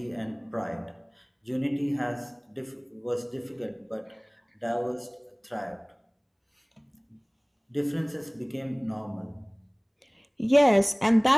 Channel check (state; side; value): identical; both; correlation 1.00